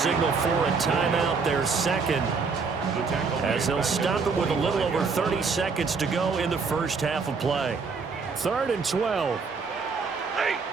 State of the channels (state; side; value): quieter; left; 4.9 dB